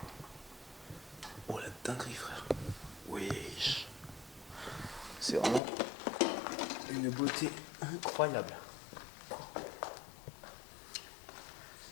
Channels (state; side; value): drops out; right; at 5.6 s